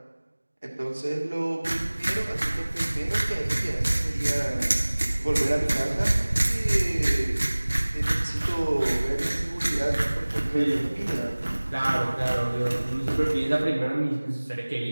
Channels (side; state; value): both; inverted; correlation -1.00